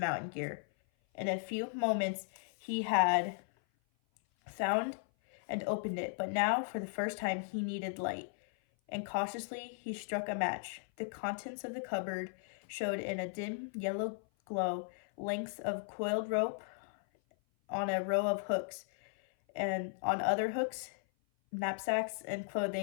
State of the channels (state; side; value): silent; right; 53 dB below the other